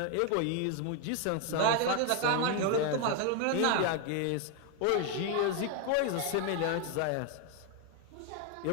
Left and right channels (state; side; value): different; both; correlation 0.01